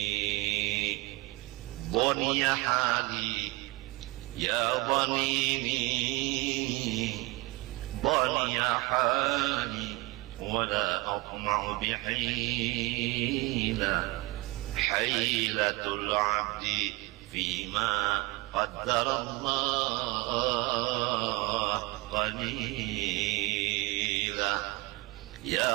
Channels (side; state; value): left; quieter; 23.9 dB